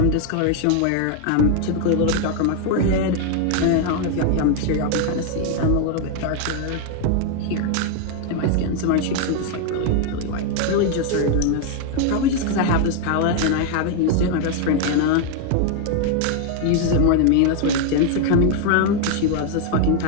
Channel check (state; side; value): different; both; correlation 0.00